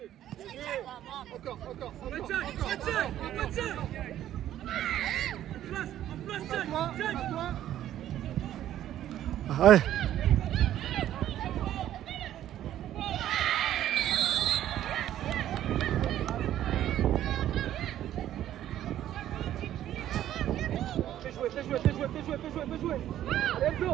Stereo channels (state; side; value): quieter; left; 12.1 dB